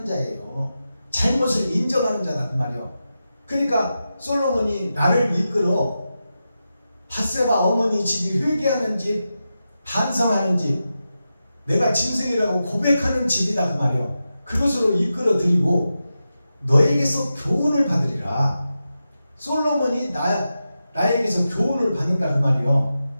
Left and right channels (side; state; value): both; inverted; correlation -0.91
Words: 자예요. 잘못을 인정하는 자다 그 말이요. 그러니까 솔로몬이 나를 이끌어 밧세바 어머니 집이 회개하는 집, 반성하는 집, 내가 짐승이라고 고백하는 집이다 그 말이요. 그것으로 이끌어 드리고 너에게서 교훈을 받으리라. 솔로몬이 나에게서 교훈을 받는다 그 말이요.